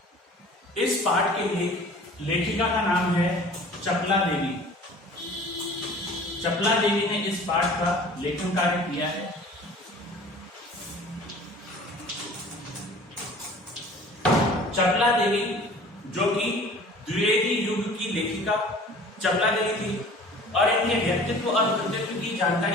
इस पाठ के लिए लेखिका का नाम है चपला देवी। चपला देवी ने इस पाठ का लेखन कार्य किया है। चपला देवी जो कि द्विवेदी युग की लेखिका चपला देवी थी और इनके व्यक्तित्व और कृतित्व की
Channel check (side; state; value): both; normal; correlation 0.46